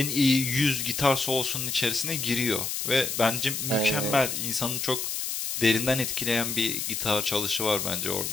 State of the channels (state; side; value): noise; left; hiss, 3 dB below the sound